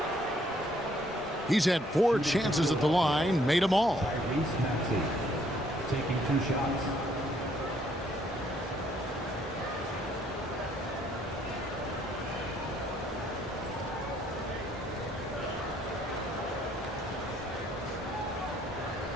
He's had 4 chances at the line, made them all. Tyrese Maxey taking 2 shots.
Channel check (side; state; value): both; normal; correlation 0.66